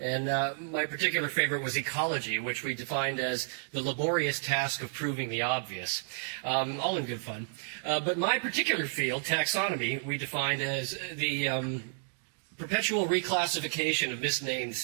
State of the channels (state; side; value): silent; left; digital silence